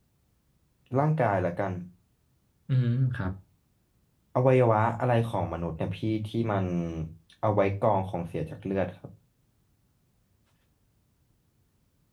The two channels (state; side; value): identical; both; correlation 1.00